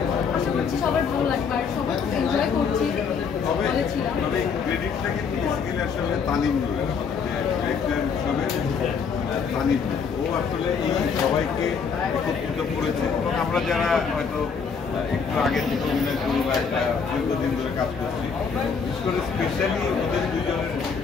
আশা করছি সবার ভালো লাগবে আর সবাই এনজয় করছি বলেছিলাম। ক্রেডিটটা কিন্তু আসলে তানিম নূরের, তানিম ও আসলে এই সবাইকে একত্রিত করেছে। এবং আমরা যারা হয়তো একটু আগে থেকে অভিনয় করি বা একটা দীর্ঘদিন ধরে কাজ করছি, বিশেষ করে স্পেশালি ওদের দুজনের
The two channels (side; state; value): right; quieter; 5.8 dB